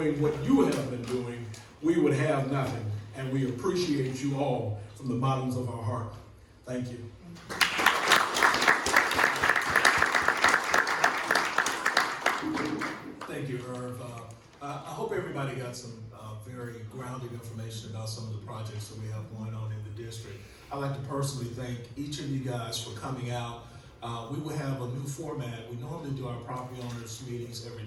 what you have been doing, we would have nothing. And we appreciate you all from the bottoms of our heart. Thank you. Thank you, Irv. I hope everybody got some very grounded information about some of the projects that we have going on in the district. I'd like to personally thank each of you guys for coming out. We will have a new format. We normally do our property owners meetings every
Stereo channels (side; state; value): both; identical; correlation 1.00